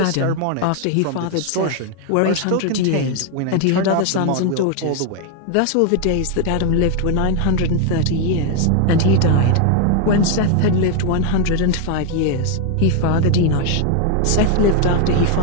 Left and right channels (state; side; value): different; both; correlation 0.01